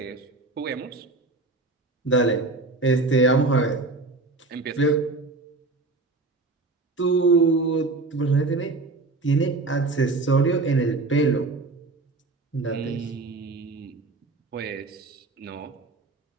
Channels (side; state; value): left; quieter; 3.4 dB